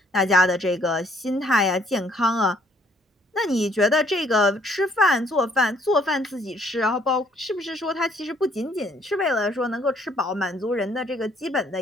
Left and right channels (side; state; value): both; normal; correlation 0.64